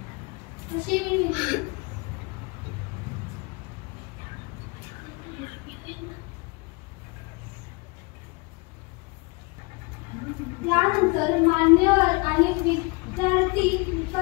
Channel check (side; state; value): right; quieter; 27.8 dB